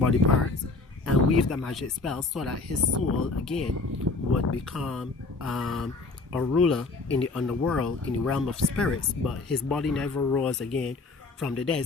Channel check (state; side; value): quieter; right; 3.6 dB